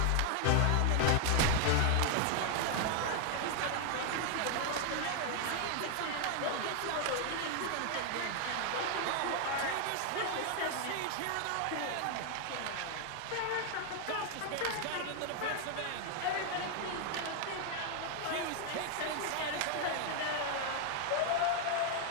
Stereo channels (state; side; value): different; both; correlation 0.00